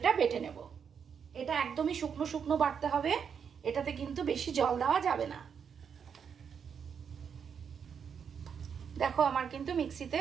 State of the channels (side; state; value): left; quieter; 7.1 dB